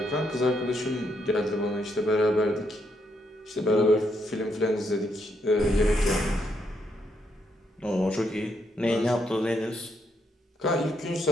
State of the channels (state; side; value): normal; both; correlation 0.77